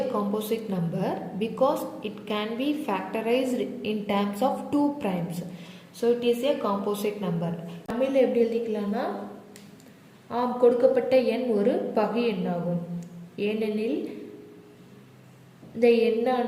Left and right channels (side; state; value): both; identical; correlation 1.00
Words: composite number because it can be factorized in terms of 2 primes. So it is a composite number. தமிழில் எப்படி எழுதிக்கலாம்னா, கொடுக்கப்பட்ட எண் ஒரு பகு எண்ணாகும். ஏனெனில் இந்த